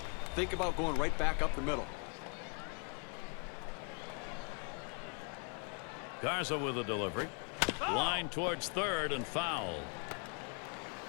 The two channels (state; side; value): quieter; right; 39.3 dB